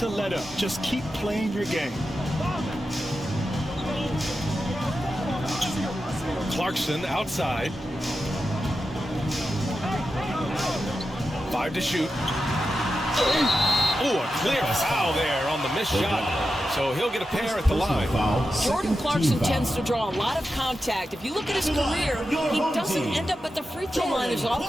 let up. Just keep playing your game. Clarkson outside. 5 to shoot. Oh, a clear foul there on the missed shot. So he'll get a pair at the line. Jordan Clarkson tends to draw a lot of contact. If you look at his career, he doesn't end up at the free throw line as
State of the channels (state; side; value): normal; both; correlation 0.90